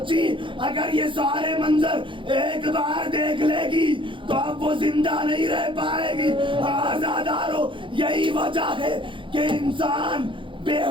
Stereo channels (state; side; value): late; left; 0.24 ms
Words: اگر یہ سارے منظر ایک بار دیکھ لے گی تو اب وہ زندہ نہیں رہ پائے گی۔ آزادارو، یہی وجہ ہے کہ انسان بے